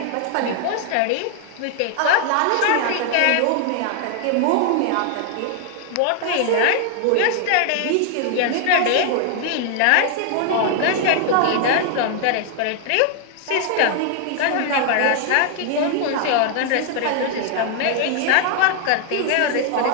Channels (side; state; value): both; different; correlation 0.00